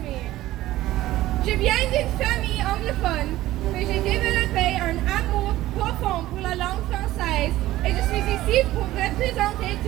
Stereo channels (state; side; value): quieter; left; 15.8 dB